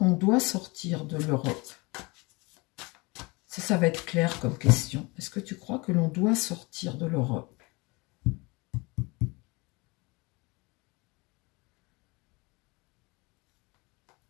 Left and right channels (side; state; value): right; quieter; 25.9 dB